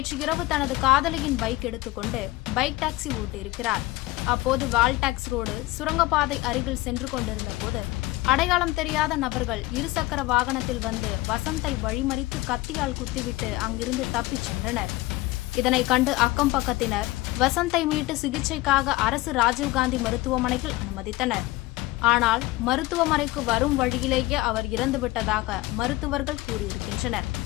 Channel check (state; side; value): quieter; right; 18.9 dB